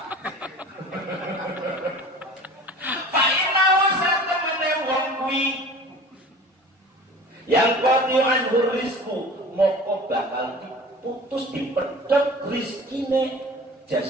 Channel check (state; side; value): normal; both; correlation 0.42